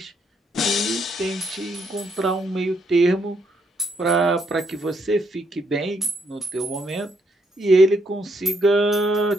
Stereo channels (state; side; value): normal; both; correlation 0.74